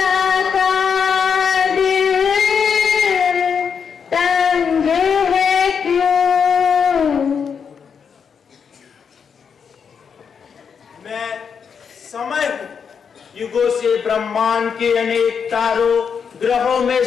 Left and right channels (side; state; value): right; quieter; 6.6 dB